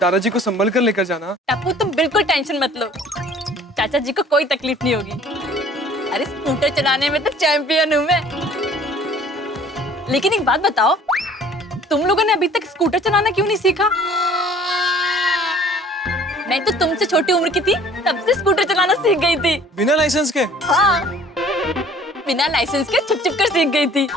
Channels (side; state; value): both; normal; correlation 0.52